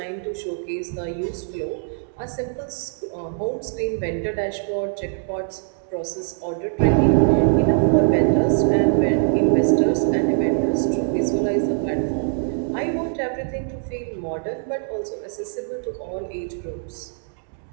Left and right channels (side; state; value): left; silent; digital silence